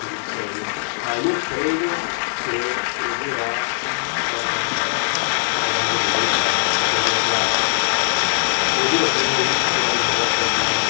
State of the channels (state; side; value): silent; right; 65 dB below the other